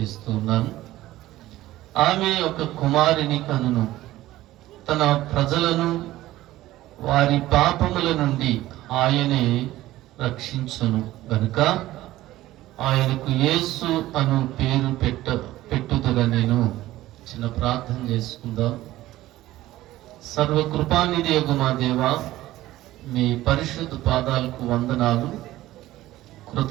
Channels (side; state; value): left; quieter; 15.8 dB